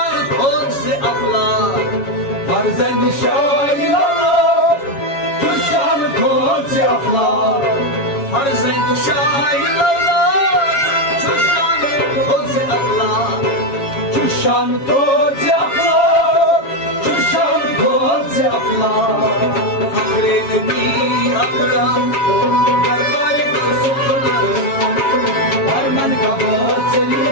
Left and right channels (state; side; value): late; right; 7.2 ms